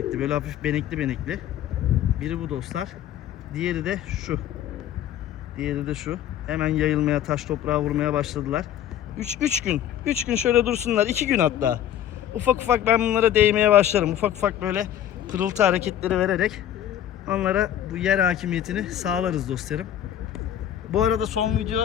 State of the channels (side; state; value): right; quieter; 10.9 dB